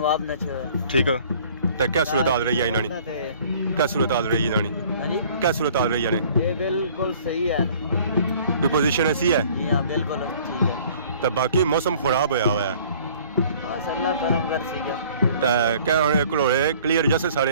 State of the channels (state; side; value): inverted; both; correlation -0.53